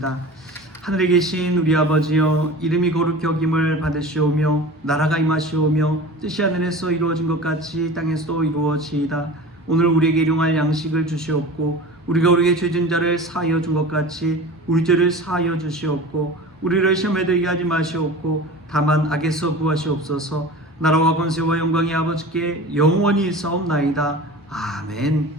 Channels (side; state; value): both; normal; correlation 0.36